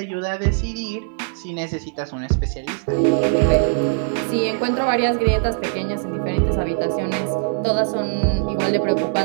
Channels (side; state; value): left; silent; 63 dB below the other